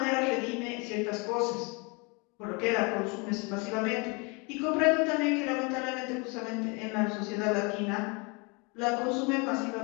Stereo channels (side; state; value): right; quieter; 30.0 dB